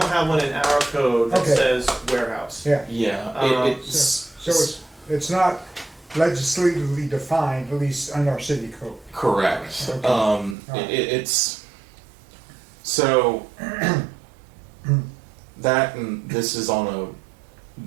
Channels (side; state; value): left; drops out; at 10.6 s